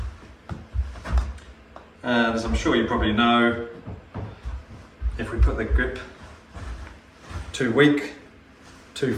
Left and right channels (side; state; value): both; identical; correlation 1.00